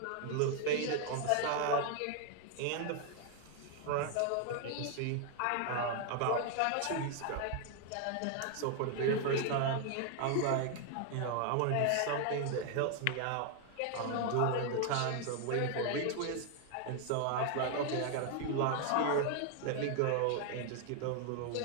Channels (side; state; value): both; different; correlation 0.00